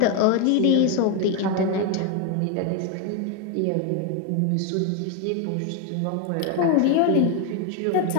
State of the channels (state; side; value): different; both; correlation 0.01